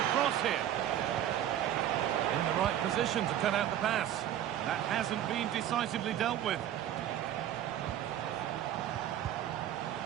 cross here. In the right position to cut out the pass. That hasn't been decisively dealt with.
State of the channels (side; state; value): left; quieter; 11.3 dB